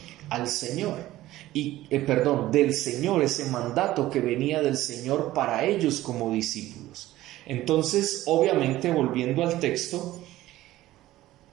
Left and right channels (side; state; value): left; quieter; 15.7 dB